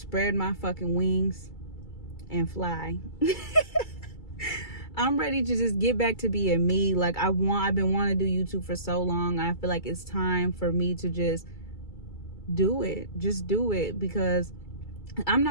my fucking wings and fly. I'm ready to just get back to being me. Like I've been wanting to do YouTube for so long. I feel like it's time for me to just do it. Just do it, because I'm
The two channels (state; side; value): late; right; 2.3 ms